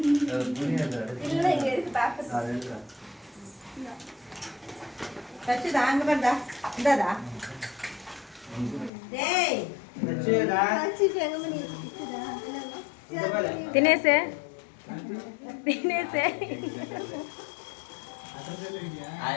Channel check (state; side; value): drops out; right; at 8.9 s